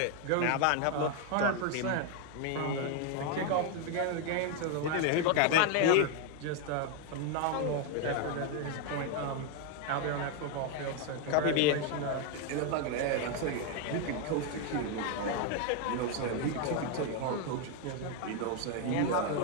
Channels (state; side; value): different; both; correlation 0.01